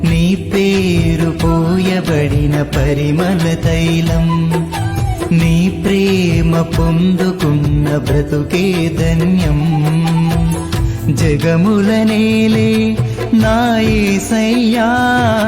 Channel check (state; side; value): identical; both; correlation 1.00